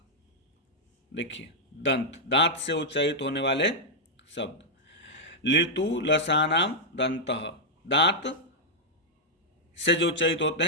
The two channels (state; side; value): normal; both; correlation -0.06